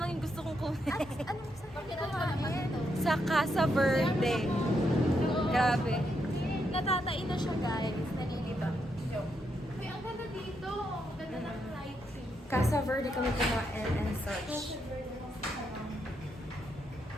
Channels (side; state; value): both; normal; correlation 0.80